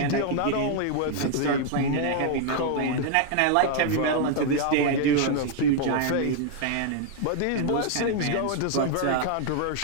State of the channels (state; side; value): different; both; correlation 0.00